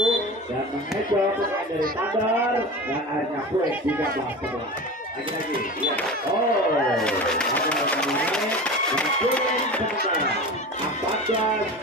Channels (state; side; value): normal; both; correlation 0.31